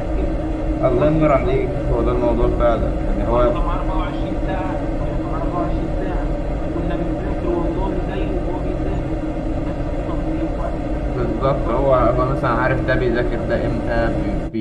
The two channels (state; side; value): identical; both; correlation 1.00